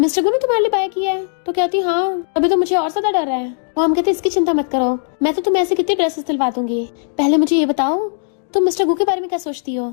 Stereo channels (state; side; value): silent; right; digital silence